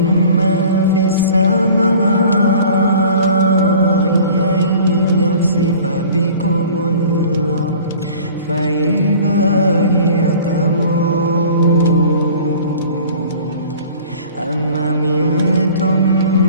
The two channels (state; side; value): inverted; both; correlation -0.46